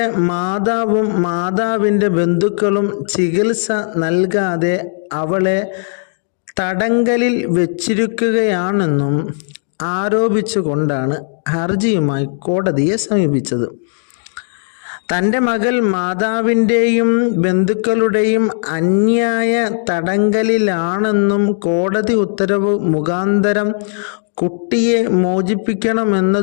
മാതാവും മാതാവിൻ്റെ ബന്ധുക്കളും ചികിത്സ നൽകാതെ അവളെ തടങ്കലിൽ വെച്ചിരിക്കുകയാണെന്നും ആരോപിച്ചുകൊണ്ടാണ് ഹർജിയുമായി കോടതിയെ സമീപിച്ചത്. തൻ്റെ മകൾ മാതാവിൻ്റെയും ബന്ധുക്കളുടെയും അന്യായ തടങ്കലിലാണെന്നും കോടതി ഉത്തരവ് മുഖാന്തരം കുട്ടിയെ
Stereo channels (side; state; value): right; silent; digital silence